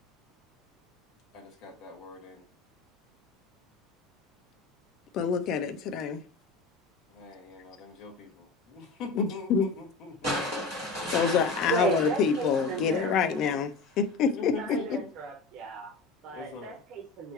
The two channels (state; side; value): quieter; right; 4.2 dB